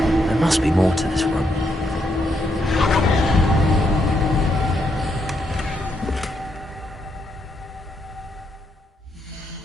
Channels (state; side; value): normal; both; correlation 0.78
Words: must be more to this room.